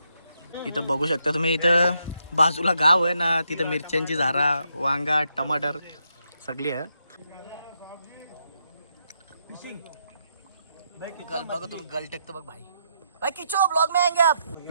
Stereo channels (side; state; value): both; inverted; correlation -0.79